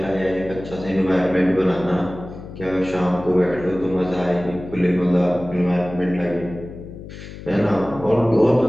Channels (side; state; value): left; noise; hum, 13 dB below the sound